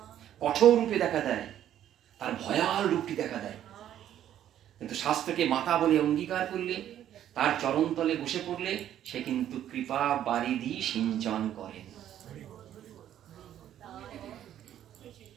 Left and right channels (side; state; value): left; quieter; 11.1 dB